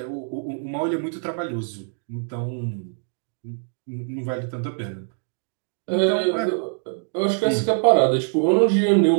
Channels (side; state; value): left; silent; digital silence